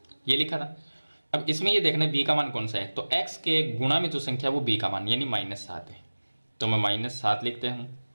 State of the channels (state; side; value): inverted; both; correlation -1.00